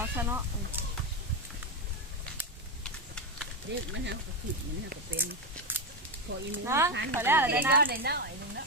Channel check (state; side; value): normal; both; correlation 0.10